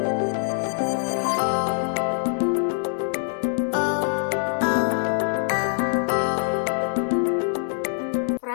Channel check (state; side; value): silent; right; 63 dB below the other